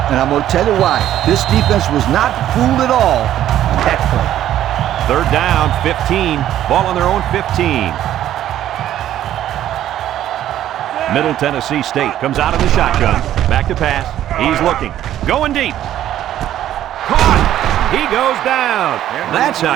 and I'm going to tell you why. This defense was not fooled at all on that play. 3rd down, 15. Ball on their own 15. Middle Tennessee State comes out of the shotgun. Back to pass. He's looking. Going deep. Caught. He goes down. That's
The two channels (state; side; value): quieter; left; 12.1 dB